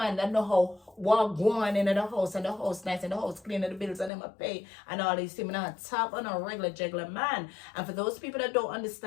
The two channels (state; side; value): drops out; right; at 4.1 s